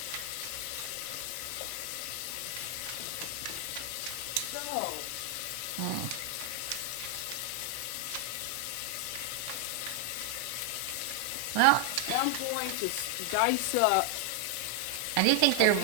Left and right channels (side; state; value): both; different; correlation 0.00